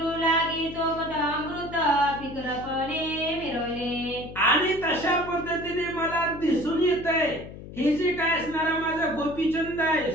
लागी चोपट अमृत, फिकरपणे मिरवले. आणि तशा पद्धतीने मला दिसून येतंय हे जे काय असणारा माझा गोपीचंद आहे,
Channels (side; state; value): left; noise; hum, 13 dB below the sound